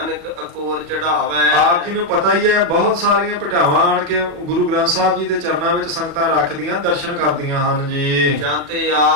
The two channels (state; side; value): late; left; 38 ms